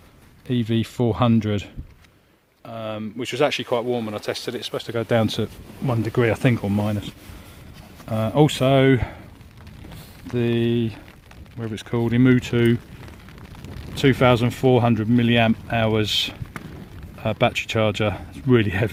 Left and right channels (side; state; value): both; identical; correlation 1.00